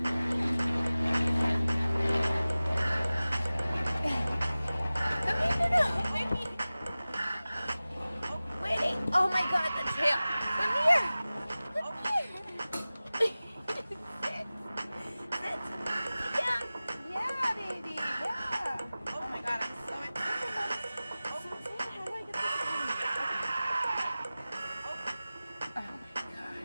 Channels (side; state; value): both; inverted; correlation -0.97